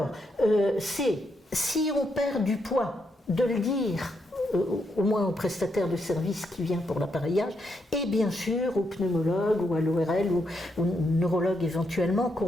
si on perd du poids, de le dire au moins au prestataire de service qui vient pour l'appareillage, et bien sûr au pneumologue ou à l'ORL ou au neurologue éventuellement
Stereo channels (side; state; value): both; normal; correlation 0.79